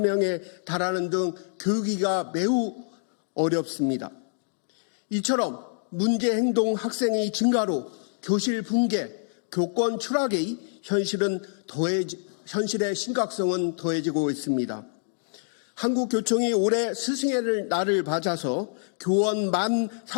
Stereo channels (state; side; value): silent; right; digital silence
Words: 명에 달하는 등 교육이가 매우 어렵습니다. 이처럼 문제 행동 학생의 증가로 교실 붕괴, 교권 추락의 현실의 심각성은 더해지고 있습니다. 한국교총이 올해 스승의 날을 맞아서 교원